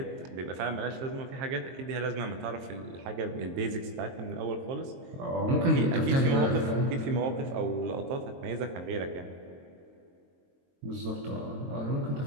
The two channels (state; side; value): late; left; 22 ms